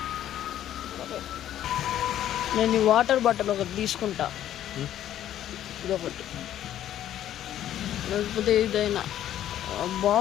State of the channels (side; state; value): right; quieter; 11.7 dB